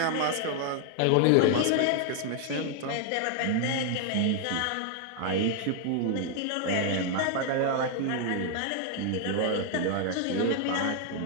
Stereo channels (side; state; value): both; different; correlation 0.00